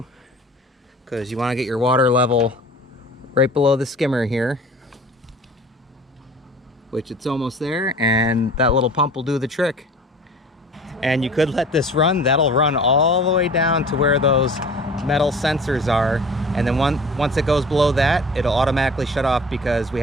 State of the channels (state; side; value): normal; both; correlation 0.43